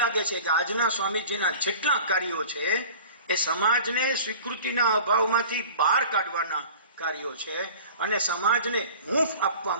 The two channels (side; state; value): both; inverted; correlation -0.41